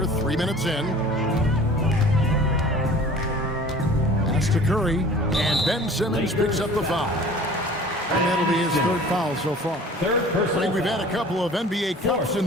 3 minutes in. Pass to Curry, and Ben Simmons picks up the foul. And that'll be his third foul so far. Third personal We've had a couple of NBA Cups in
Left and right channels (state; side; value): normal; both; correlation 0.46